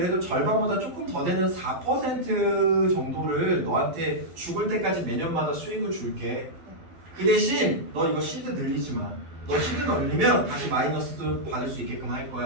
절반보다 조금 더 되는 4% 정도를 너한테 죽을 때까지 매년마다 수익을 줄게. 그 대신 너 이거 시드 늘리지 마. 너 시드 늘리면 다시 마이너스도 받을 수 있게끔 할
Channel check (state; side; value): late; left; 12 ms